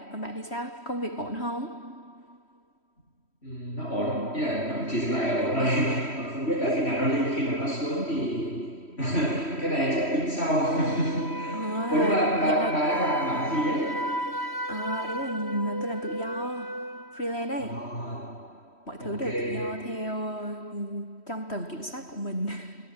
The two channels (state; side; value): late; right; 3.1 ms